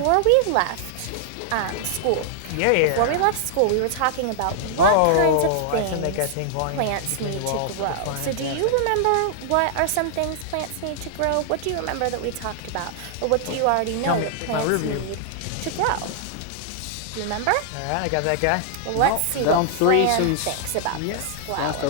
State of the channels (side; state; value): both; different; correlation -0.01